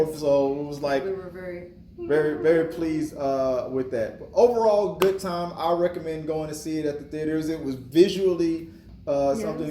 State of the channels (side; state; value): both; identical; correlation 1.00